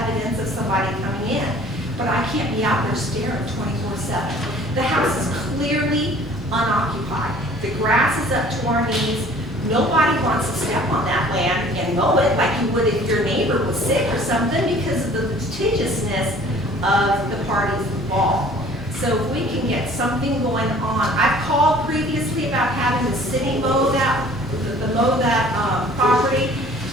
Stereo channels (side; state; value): both; normal; correlation 0.51